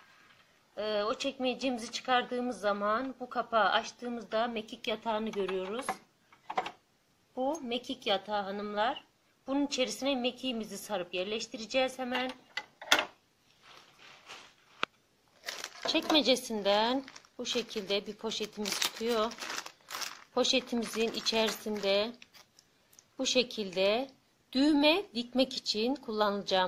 O çekmecemizi çıkardığımız zaman bu kapağı açtığımızda mekik yatağını görüyoruz. Bu mekik yatağı hanımlar. Bunun içerisine mekiğimizi sarıp yerleştireceğiz hemen. Çekmecesinden bu şekilde bir poşetimiz çıkıyor. Poşetimizin içerisinde bu şekilde düğme dikmek için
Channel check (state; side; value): identical; both; correlation 1.00